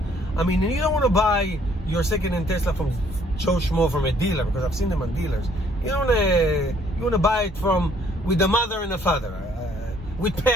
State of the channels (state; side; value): normal; both; correlation 0.63